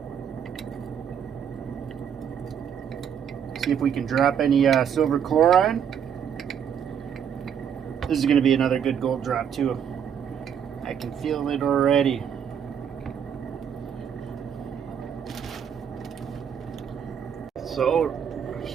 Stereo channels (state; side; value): quieter; left; 8.2 dB